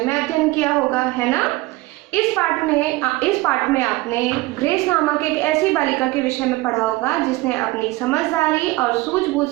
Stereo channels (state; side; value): quieter; left; 20.3 dB